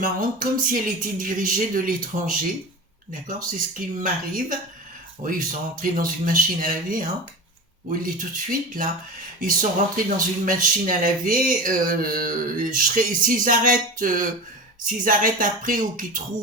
comme si elle était dirigée de l'étranger. D'accord? C'est ce qui m'arrive. Oui, ils sont rentrés dans une machine à laver, hein. Oui, il est tout de suite, là. Ils sont rentrés dans une machine à laver. S'ils arrêtent après ou qu'ils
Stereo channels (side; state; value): both; normal; correlation 0.29